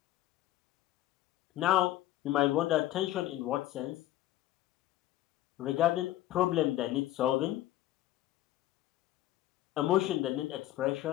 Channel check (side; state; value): right; quieter; 14.5 dB